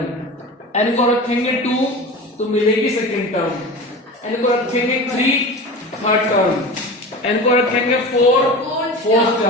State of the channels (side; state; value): both; normal; correlation 0.32